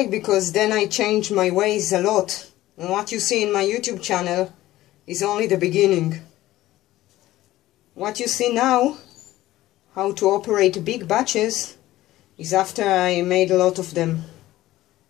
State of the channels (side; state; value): right; quieter; 15.8 dB